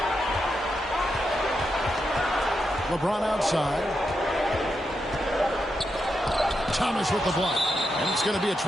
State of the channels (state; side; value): normal; both; correlation 0.85